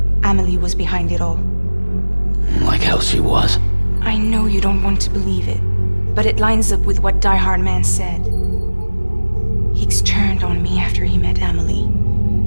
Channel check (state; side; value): inverted; both; correlation -1.00